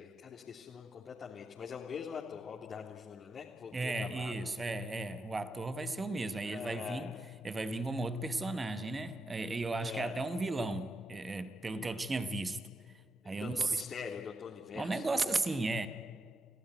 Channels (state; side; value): normal; both; correlation 0.86